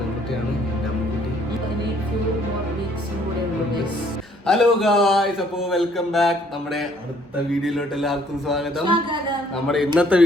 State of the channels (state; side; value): normal; both; correlation 0.63